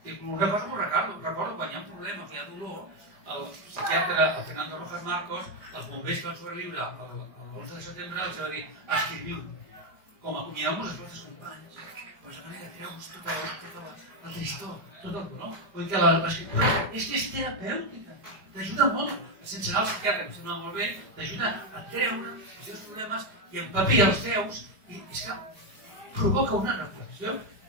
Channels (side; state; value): left; late; 4.9 ms